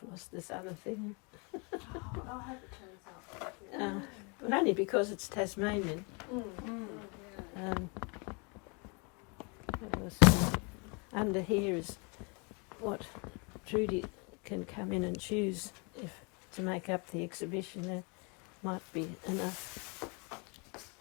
lost this other thing. I'll have it turns up. But only because it's Tasmanian. Under here is what Trudy can come in and choose if to make up the exhibition. There might be enough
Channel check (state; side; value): quieter; right; 32.7 dB